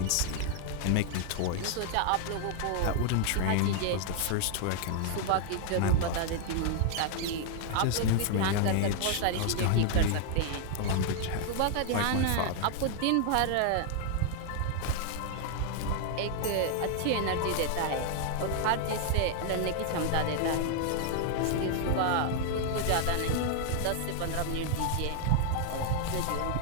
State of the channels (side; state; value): both; different; correlation 0.00